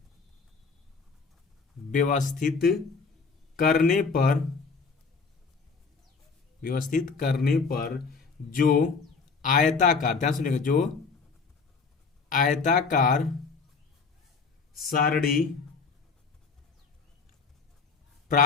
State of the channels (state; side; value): quieter; right; 4.9 dB